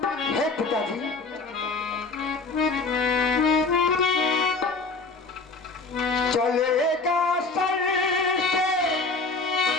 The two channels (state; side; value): quieter; right; 3.8 dB